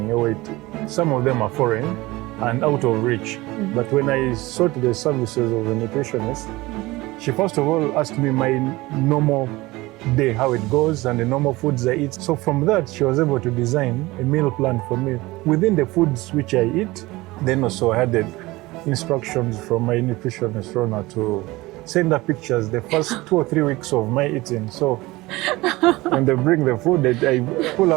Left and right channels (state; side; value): quieter; left; 20.4 dB